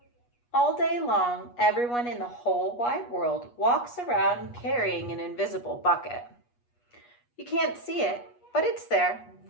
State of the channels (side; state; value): right; late; 8.3 ms